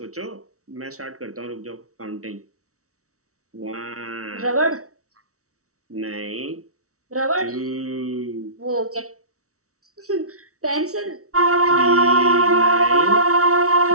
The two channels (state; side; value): late; left; 0.64 ms